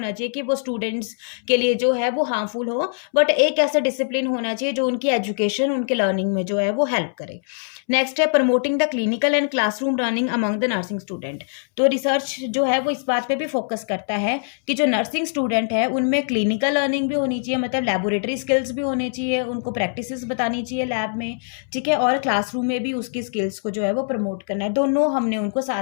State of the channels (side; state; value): right; silent; 64 dB below the other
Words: चाहिए कि वो स्टूडेंट्स के लिए जो है वो हार्मफुल हो, बट एक ऐसा डिसिप्लिन होना चाहिए जो उनकी एजुकेशन, उनके लर्निंग में जो है वो हेल्प करे। नेक्स्ट है promoting the clinical and classroom learning among the nursing student. तो रिसर्च जो है वो इस बात पे भी फोकस करता है कि जो नर्सिंग स्टूडेंट है उनमें क्लिनिकल लर्निंग भी होनी चाहिए, मतलब लेबोरेटरी स्किल्स भी होने चाहिए, उनको प्रैक्टिसेस बतानी चाहिए लैब में, ठीक है, और क्लासरूम में भी उसकी स्किल्स को जो है वो प्रमोट करना है। दोनों हमने उनको